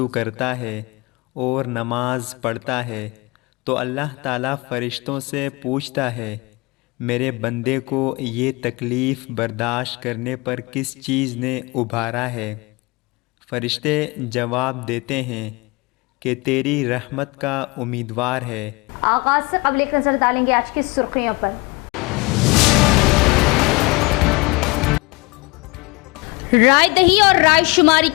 करता है और नमाज पढ़ता है तो अल्लाह ताला फ़रिश्तों से पूछता है, मेरे बंदे को ये तकलीफ़ बर्दाश्त करने पर किस चीज़ ने उभारा है। फ़रिश्ते जवाब देते हैं कि तेरी रहमत का उम्मीदवार है। आगाज़ से क़ब्ल एक नज़र डालेंगे आज की सुर्खियों पर। राय दही और राय शुमारी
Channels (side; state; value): right; quieter; 25.9 dB